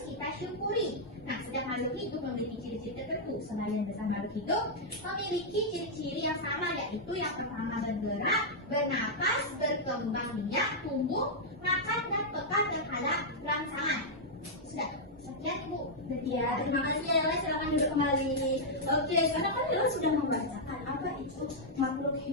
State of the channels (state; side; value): normal; both; correlation -0.06